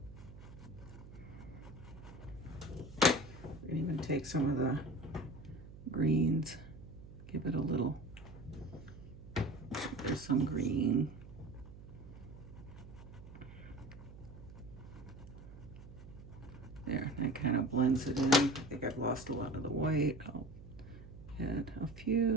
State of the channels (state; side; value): noise; right; hum, 15 dB below the sound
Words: We can even take some of the greens, give it a little, there's some green. There, that kind of blends it in. I think I've lost a lot of the white. I'll add a